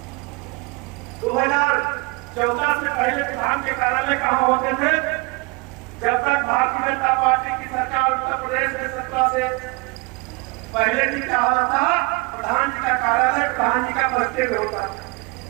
2014 से पहले प्रधान के कार्यालय कहाँ होते थे? जब तक भारतीय जनता पार्टी की सरकार उत्तर प्रदेश में सत्ता से पहले जी क्या होता था, प्रधान जी का कार्यालय प्रधान जी का बस्ते में होता था,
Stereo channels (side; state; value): left; quieter; 27.9 dB